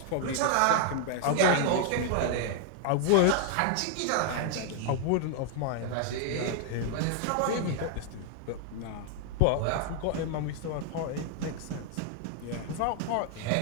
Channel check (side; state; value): both; different; correlation 0.00